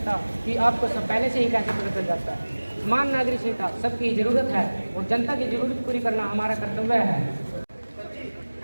कि आपको सब पहले से ही कैसे पता चल जाता है। समान नागरिक संहिता सबकी जरूरत है और जनता की जरूरत पूरी करना हमारा कर्तव्य है।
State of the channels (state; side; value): inverted; both; correlation -1.00